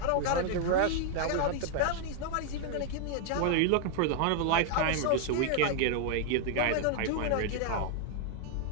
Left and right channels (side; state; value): both; different; correlation 0.00